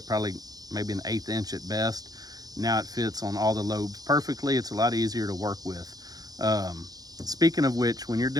probably maybe an 1/8 inch at best. Now it fits on all the lobes perfectly. It's a lot easier to work with. Speaking of which, when you're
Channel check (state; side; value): late; left; 0.19 ms